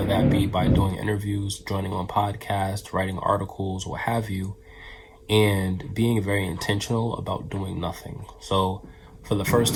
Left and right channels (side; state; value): both; identical; correlation 1.00